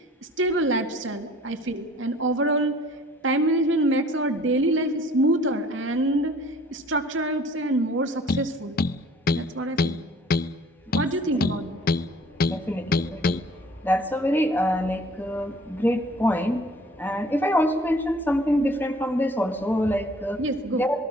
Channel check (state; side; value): normal; both; correlation 0.53